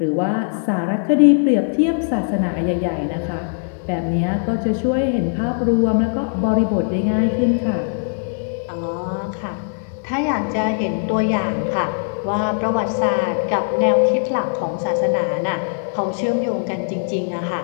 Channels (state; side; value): silent; right; 66 dB below the other